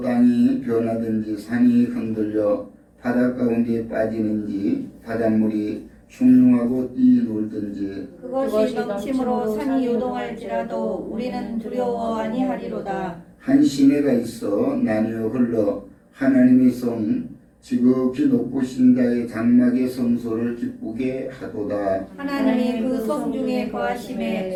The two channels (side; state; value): both; identical; correlation 1.00